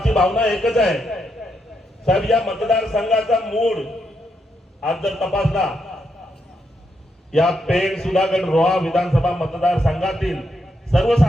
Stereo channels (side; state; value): both; normal; correlation 0.80